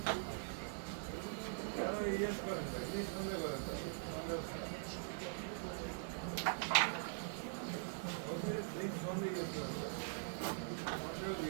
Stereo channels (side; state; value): left; silent; digital silence